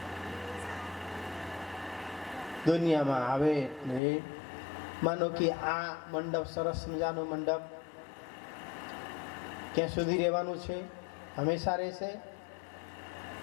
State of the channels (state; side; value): drops out; right; at 4.0 s